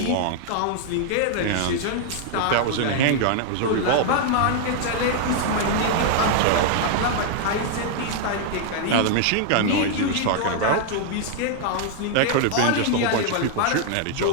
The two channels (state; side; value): different; both; correlation 0.00